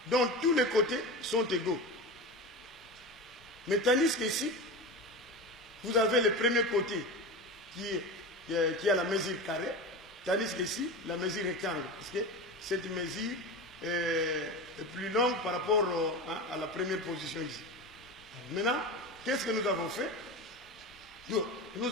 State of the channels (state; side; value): normal; both; correlation 0.26